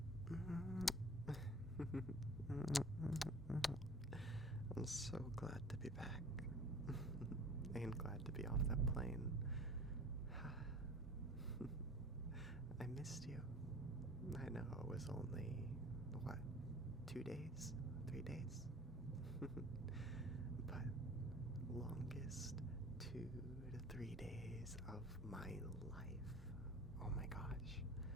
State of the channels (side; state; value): both; normal; correlation 0.44